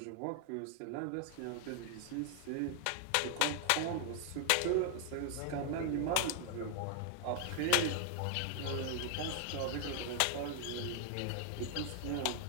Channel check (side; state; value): both; different; correlation 0.00